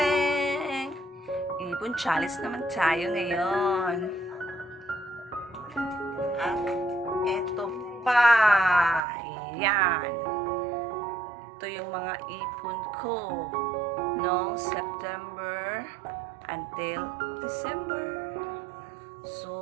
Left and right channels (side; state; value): left; drops out; at 9.0 s